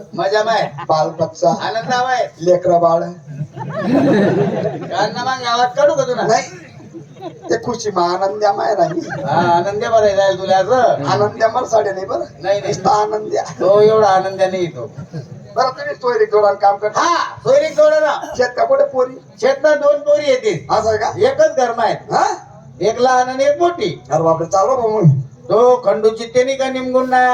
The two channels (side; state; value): both; identical; correlation 1.00